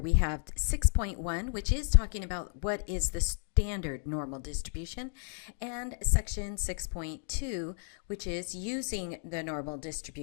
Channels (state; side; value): silent; right; 56 dB below the other